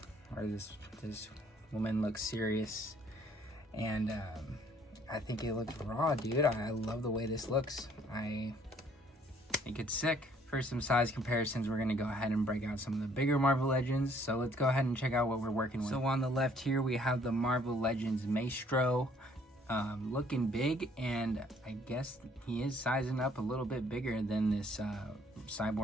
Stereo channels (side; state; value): both; normal; correlation 0.61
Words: or this woman looks serious, and I think it looks raw, dude. I love the way this looks. I think it's sick. For some size comparisons, we're going to go ahead and break out some of the bigger Marvel Legends. So let's go ahead and check out what we're working with. So on the left here, we have the Marvel Legends Maestro, looking big, and I guess he is sizing up a little bit bigger than this